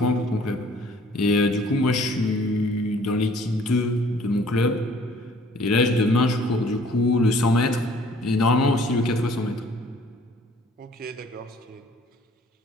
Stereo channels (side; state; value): both; normal; correlation 0.56